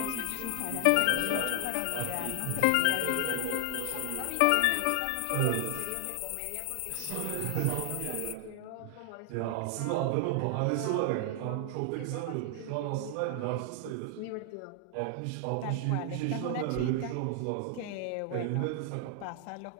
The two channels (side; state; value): both; different; correlation 0.00